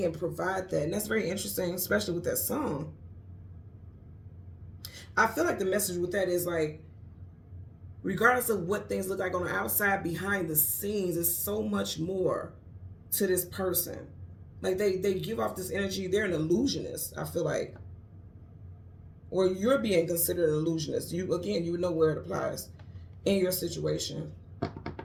provide that. And that's very interesting, especially with that song. I feel like the message with that is like, regardless of what things look like on the outside, behind the scenes, there's so much more to this person. Like they give off this energy. They're an illusionist, I feel like. Or you're being considered an illusionist. You would know where it applies in your situation.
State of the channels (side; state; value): both; identical; correlation 1.00